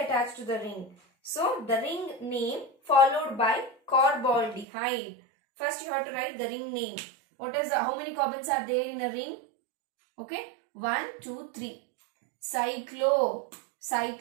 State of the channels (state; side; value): drops out; left; at 4.7 s